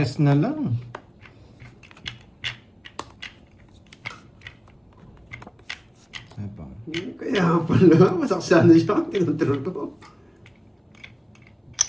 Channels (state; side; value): identical; both; correlation 1.00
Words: na lang. Apa? Kaya pala, masaksana siya ang tinontrol ko.